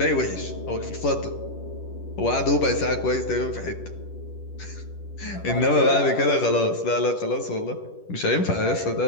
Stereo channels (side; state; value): right; late; 10 ms